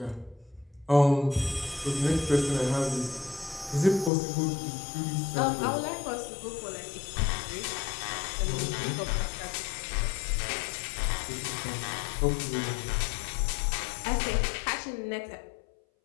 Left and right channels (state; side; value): drops out; right; at 4.1 s